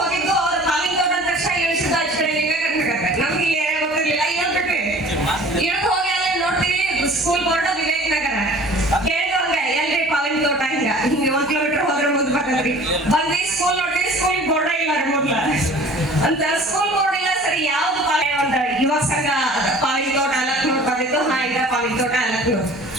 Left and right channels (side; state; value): both; normal; correlation 0.46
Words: ಅವ್ರ ಪಾವಿನ ತೋಟ ಅಂದ ತಕ್ಷಣ ಇಳಿಸಿದ್ದು ಅಚ್ಚ ಕಡೆ ಲಿಂಗಕರ್ನಾಟಕ. ನಮ್ಗೆ ಇಲ್ಲಿ ಏನೇ ಗೊತ್ತಿರ್ಲಿಲ್ಲ, ಇಳ್ಬಿಟ್ವಿ. ಇಳ್ದು ಹೋಗಿ ಅಲ್ಲೇ ನೋಡ್ತೀವಿ ಸ್ಕೂಲ್ ಬೋರ್ಡ್ ವಿವೇಕ್ ನಗರ. ಕೇಳಿದ್ರು ಹಂಗ ಎಲ್ರಿ ಪಾವಿನ ತೋಟ ಹಿಂಗ 1 ಕಿಲೋಮೀಟರ್ ಹೋದ್ರೆ ಮುಂದೆ ಬರ್ತದ್ರಿ. ಬಂದ್ವಿ ಸ್ಕೂಲ್ ನೋಡ್ತೀವಿ, ಸ್ಕೂಲ್ ಬೋರ್ಡ್ ಇಲ್ಲ ಮೊದ್ಲ ಅಂತ. ಸ್ಕೂಲ್ ಬೋರ್ಡ್ ಇಲ್ಲ, ಸರಿ ಯಾವ್ದು ಒಂದು ಯುವಕ ಸಂಘ ಪಾವಿನ ತೋಟ ಅಲಕ್ನೂರು ಬಂದಿತ್ತು. ಈಗ ಪಾವಿನ ತೋಟ ಅಲಕ್ನೂರು